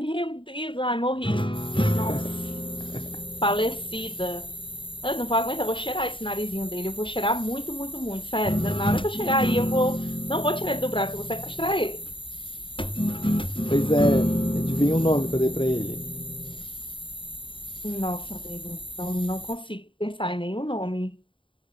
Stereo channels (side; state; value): right; late; 0.25 ms